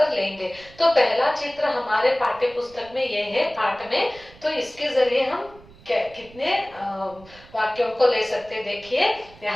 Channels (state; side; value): noise; right; rumble, 23 dB below the sound